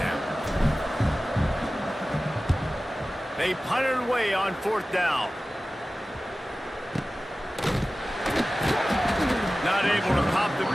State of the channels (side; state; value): both; normal; correlation 0.96